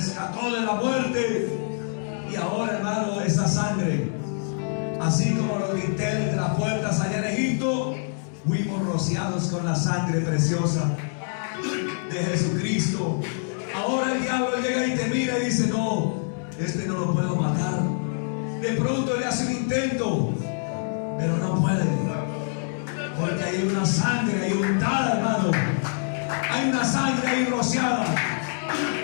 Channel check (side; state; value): right; silent; digital silence